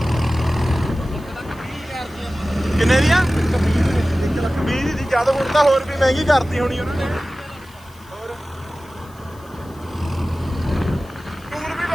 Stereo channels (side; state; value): left; noise; hiss, 27 dB below the sound